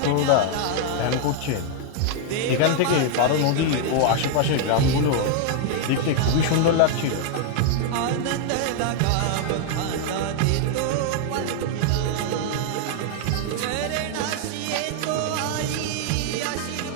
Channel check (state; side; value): different; both; correlation 0.00